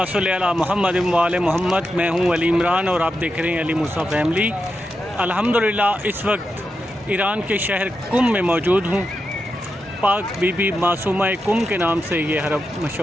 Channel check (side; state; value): both; normal; correlation 0.88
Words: सल्ली अला मुहम्मद व आले मोहम्मद। मैं हूँ अली इमरान और आप देख रहे हैं अली मूसा फैमिली। अल्हम्दुलिल्लाह इस वक्त ईरान के शहर कुम में मौजूद हूँ। पाक बीबी मासूमा कुम के नाम से ये हरम